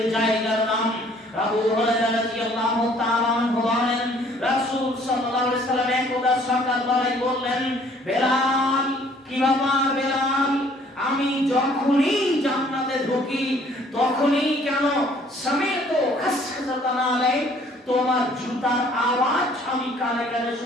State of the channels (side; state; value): both; normal; correlation 0.58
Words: জায়গার নাম। আবু হুরায়রা রাদিয়াল্লাহু তাআলা আনহু বলেন, রাসূল সাল্লাল্লাহু আলাইহি ওয়াসাল্লাম একদা সকালবেলায় বললেন, বেলাল, কি ব্যাপার বেলাল, আমি যখনই জান্নাতে ঢুকি তখনই কেন সমেত খাসখাসাতান আলাই, তোমার জুতার আওয়াজ আমি কানে কানে